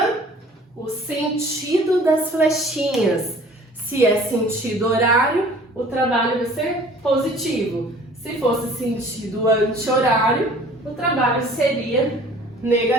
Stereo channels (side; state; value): both; normal; correlation 0.50